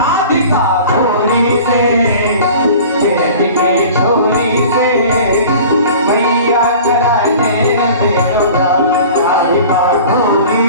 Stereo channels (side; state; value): both; inverted; correlation -0.42